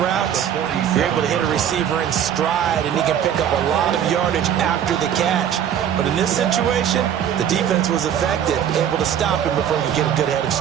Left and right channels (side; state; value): left; quieter; 9.5 dB